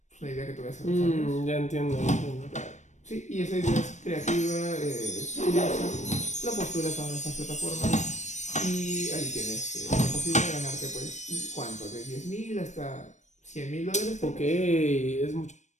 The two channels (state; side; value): late; right; 0.34 ms